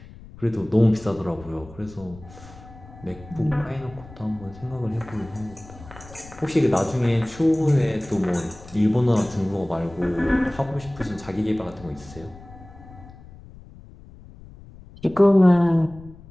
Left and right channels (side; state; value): left; noise; rumble, 19 dB below the sound